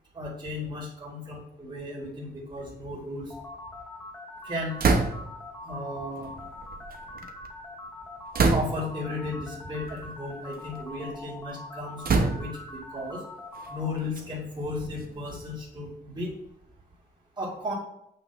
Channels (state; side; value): normal; both; correlation 0.51